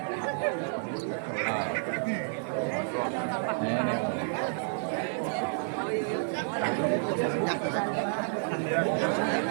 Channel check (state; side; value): silent; left; 58 dB below the other